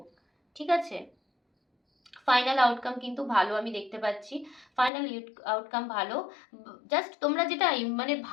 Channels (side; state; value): right; drops out; at 4.9 s